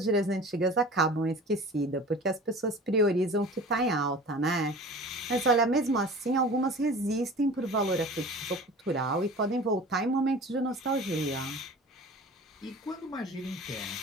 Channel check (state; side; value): normal; both; correlation 0.40